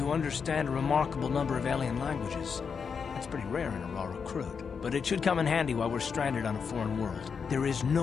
understand a remarkable number of alien languages. That's pretty rare in a raw recruit, but it should come in handy while we're stranded on a foreign world. There is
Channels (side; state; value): right; quieter; 6.0 dB